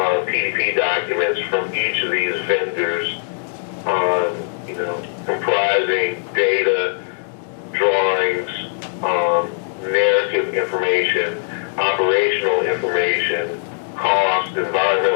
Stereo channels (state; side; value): silent; right; digital silence